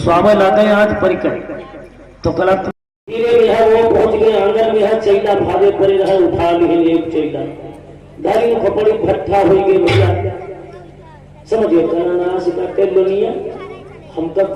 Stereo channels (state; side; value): identical; both; correlation 1.00